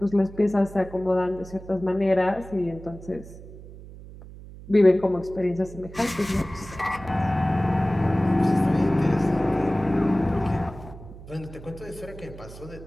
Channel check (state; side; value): noise; right; hum, 16 dB below the sound